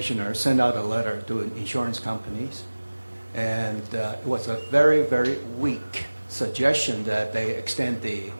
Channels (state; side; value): inverted; both; correlation -1.00